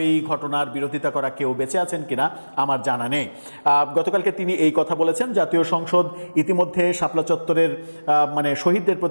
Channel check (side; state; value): both; inverted; correlation -1.00